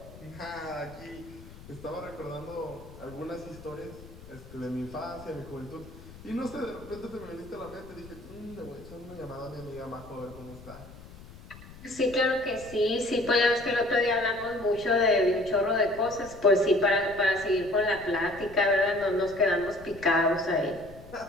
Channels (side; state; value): left; noise; rumble, 18 dB below the sound